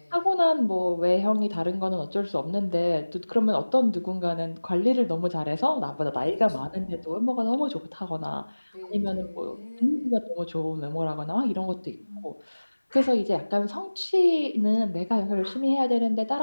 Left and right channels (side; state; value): both; inverted; correlation -1.00